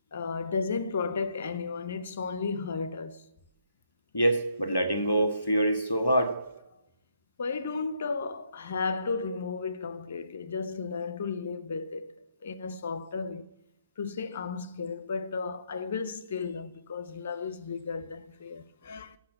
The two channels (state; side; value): inverted; both; correlation -0.74